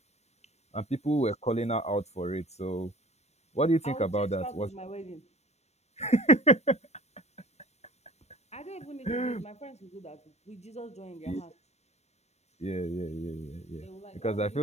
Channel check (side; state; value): right; late; 0.31 ms